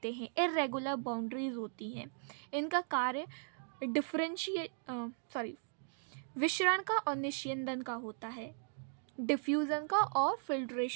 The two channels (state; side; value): silent; left; digital silence